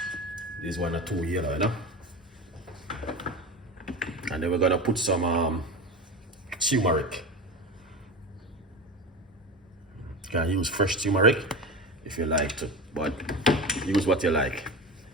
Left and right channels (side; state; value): both; normal; correlation 0.26